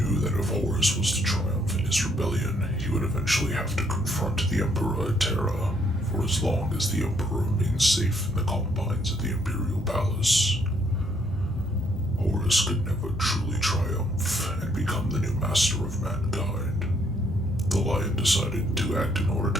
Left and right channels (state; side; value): normal; both; correlation 0.69